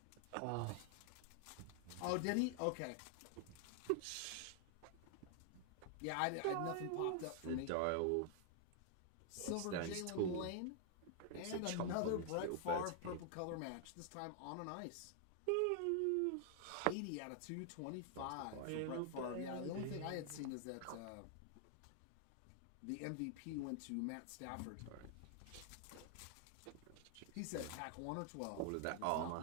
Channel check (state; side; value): different; both; correlation 0.00